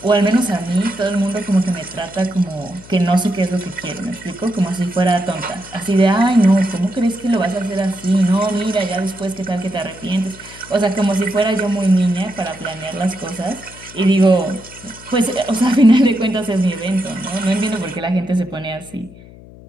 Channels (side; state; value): left; noise; hum, 20 dB below the sound